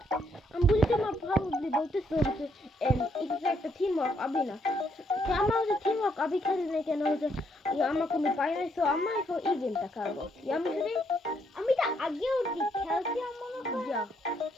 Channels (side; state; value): both; normal; correlation 0.73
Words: বুঝি তোমার প্রবাবলি বলতেছো হচ্ছে এটা একটা টিম ওয়ার্ক আবি না, আমার হচ্ছে টিম ওয়ার্ক আবি খেলি না কেন হচ্ছে আমার কোনো পাই নাই। সো আমার এখন এই গেমটা খেলবো। আমি যদি আমি তো আগেও খেলছি আমার যা